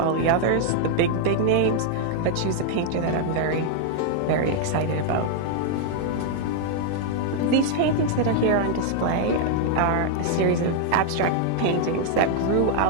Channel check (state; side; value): different; both; correlation 0.00